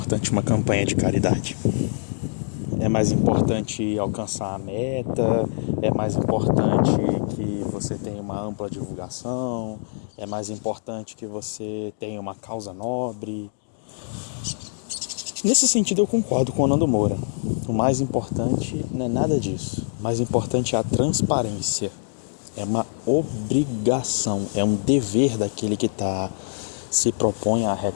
uma campanha de caridade? É mais importante alcançar a meta? É mais importante que você tenha uma ampla divulgação? É mais importante que você tenha uma causa nobre? Nesse sentido eu concordo com o Nando Moura. O mais importante não é nada disso. O mais importante é a transparência. É uma obrigação, é um dever daquele que se propõe a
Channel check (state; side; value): silent; right; digital silence